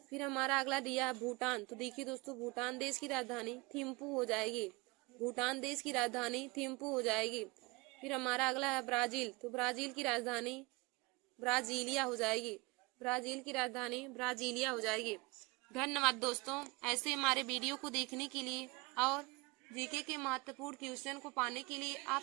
फिर हमारा अगला दिया है भूटान, तो देखिए दोस्तों भूटान देश की राजधानी थिम्पू हो जाएगी। भूटान देश की राजधानी थिम्पू हो जाएगी। फिर हमारा अगला है ब्राजील, तो ब्राजील की राजधानी ब्राजीलिया हो जाएगी। ब्राजील की राजधानी ब्राजीलिया हो जाएगी। धन्यवाद दोस्तों, ऐसे हमारे वीडियो को देखने के लिए और जीके के महत्वपूर्ण क्वेश्चन को पाने के लिए आप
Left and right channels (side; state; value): left; quieter; 25.4 dB